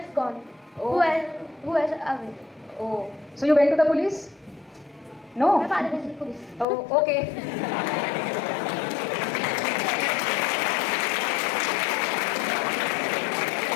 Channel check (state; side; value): drops out; right; at 6.7 s